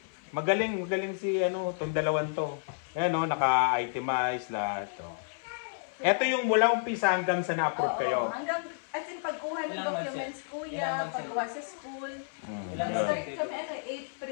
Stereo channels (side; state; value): right; silent; 57 dB below the other